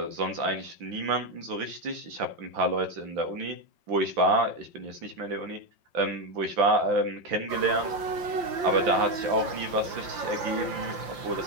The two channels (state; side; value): late; left; 5.8 ms